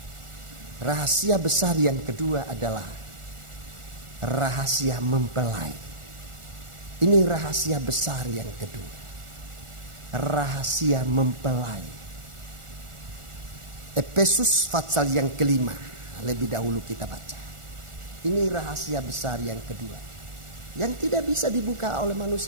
Rahasia besar yang kedua adalah rahasia mempelai. Ini rahasia besar yang kedua. Rahasia mempelai. Efesus pasal yang kelima. Lebih dahulu kita baca. Ini rahasia besar yang kedua. Yang tidak bisa dibuka oleh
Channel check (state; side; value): late; left; 1.4 ms